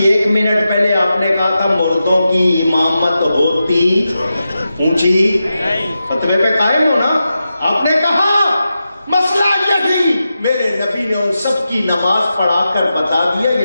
1 منٹ پہلے آپ نے کہا تھا مردوں کی امامت ہوتی اونچی، فتوے پہ قائم ہو نا؟ آپ نے کہا مسئلہ یہ تھی، میرے نبی نے ان سب کی نماز پڑھا کر بتا دیا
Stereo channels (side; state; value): both; inverted; correlation -0.90